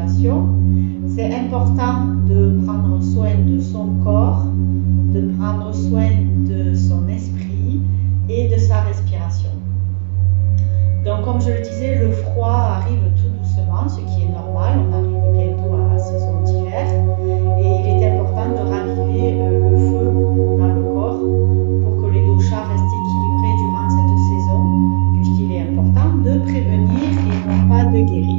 C'est important de prendre soin de son corps, de prendre soin de son esprit et de sa respiration. Donc, comme je le disais, le froid arrive tout doucement, ce qui est normal. On arrive bientôt à la saison d'hiver et il est important de raviver le feu dans le corps pour que les doshas restent équilibrés durant cette saison, puisqu'il est important de prévenir et non pas de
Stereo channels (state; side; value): silent; left; digital silence